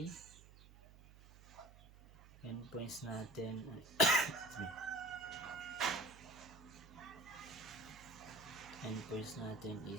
natin endpoints natin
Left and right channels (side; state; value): right; noise; hum, 20 dB below the sound